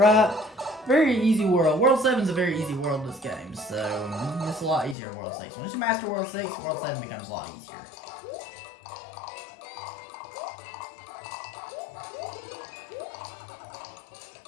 Very easy world. World 7 is a very easy world in this game, so it's a lot easier in World 6. Once you master World 6, World 7 becomes a lot easier.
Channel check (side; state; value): right; drops out; at 5.0 s